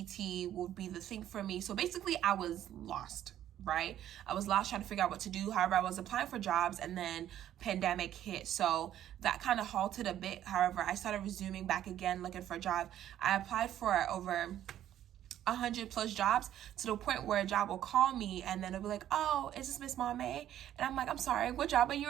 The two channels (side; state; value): left; quieter; 11.6 dB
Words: will be the thing for me. So basically I was lost, right? I was lost trying to figure out what to do. However, I was applying for jobs and then pandemic hit. So that kind of halted a bit. However, I started resuming back again, looking for a job. I applied for over 100+ jobs, to the point where a job will call me and then it'll be like, oh, is this Miss Maame? And I'm like, I'm sorry, what job are